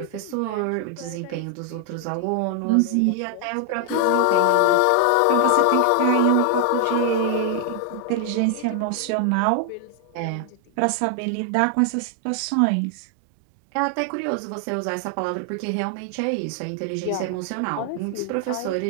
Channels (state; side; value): different; both; correlation 0.00